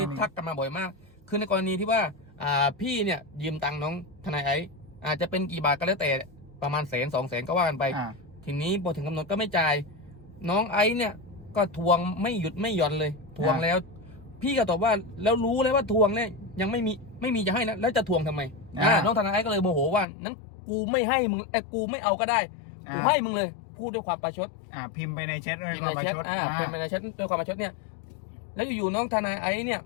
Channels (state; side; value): drops out; right; at 20.1 s